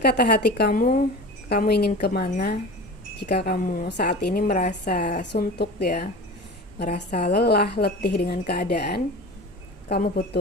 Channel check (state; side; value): normal; both; correlation 0.34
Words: hati kamu ingin kemana. Jika kamu saat ini merasa suntuk ya, merasa lelah, letih dengan keadaan, kamu